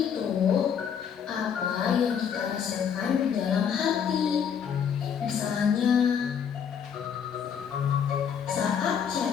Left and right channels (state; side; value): quieter; right; 7.6 dB